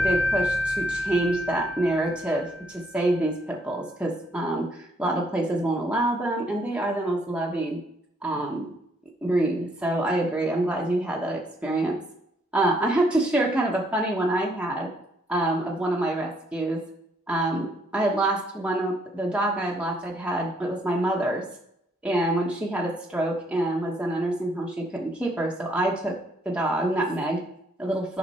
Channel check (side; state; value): both; normal; correlation 0.70